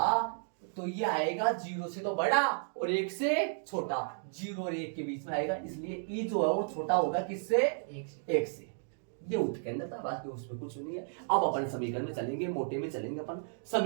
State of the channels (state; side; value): silent; left; digital silence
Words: तो ये आएगा 0 से तो बड़ा और 1 से छोटा। 0 और 1 के बीच में आएगा, इसलिए ई जो है वो छोटा होगा किससे? 1 से। ये उत्केंद्र था, बाकी उसमें कुछ नहीं है। अब अपन समीकरण में चलेंगे, मोटे में चलेंगे, अपन